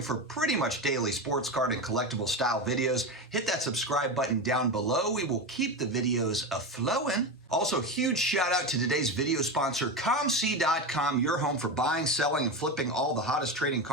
for pretty much daily sports card and collectible style videos, hit that subscribe button down below. We will keep the videos a-flowing. Also, huge shout out to today's video sponsor, COMC.com, your home for buying, selling, and flipping all the hottest trading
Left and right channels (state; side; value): normal; both; correlation 0.19